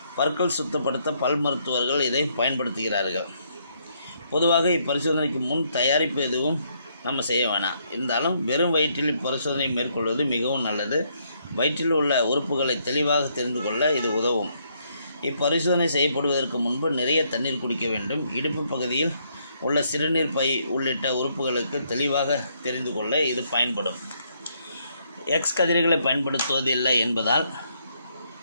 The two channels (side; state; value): both; inverted; correlation -0.72